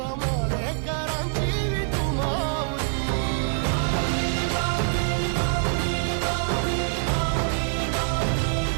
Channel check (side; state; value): left; silent; digital silence